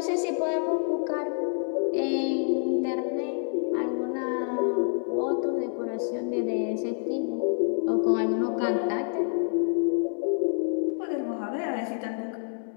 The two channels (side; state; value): right; silent; 60 dB below the other